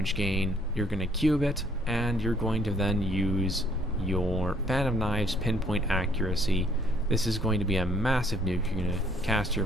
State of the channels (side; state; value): both; normal; correlation 0.64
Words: gain. You're going to cube it, and you're going to then use your Fan of Knives Pinpoint Accuracy. This is going to be a massive nuke. You're going to cast your